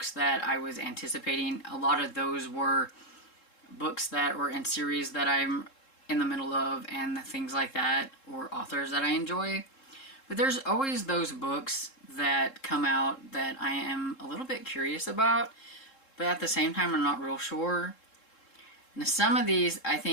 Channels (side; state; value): right; late; 3.7 ms